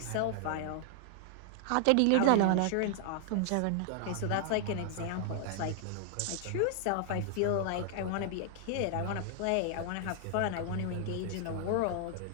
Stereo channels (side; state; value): both; different; correlation -0.01